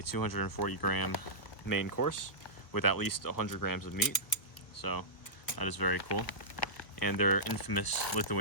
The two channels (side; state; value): right; late; 1.2 ms